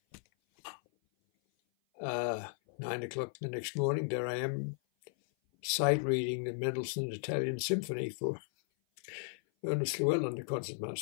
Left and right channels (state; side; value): silent; right; 54 dB below the other